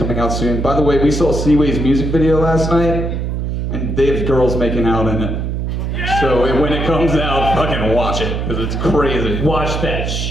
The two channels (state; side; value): noise; right; hum, 2 dB below the sound